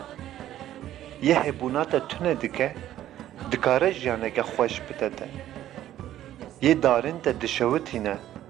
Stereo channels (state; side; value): quieter; left; 12.6 dB